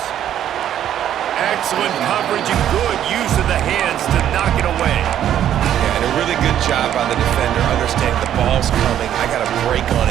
Excellent coverage and good use of the hands to knock it away. Yeah, and a really good job by the defender, understanding the ball's coming. I got to break on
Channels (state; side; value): quieter; left; 10.7 dB